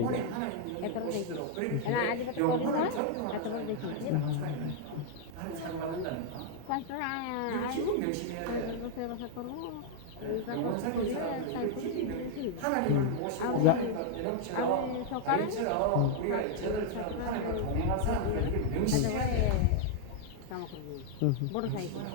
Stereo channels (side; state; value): both; different; correlation -0.01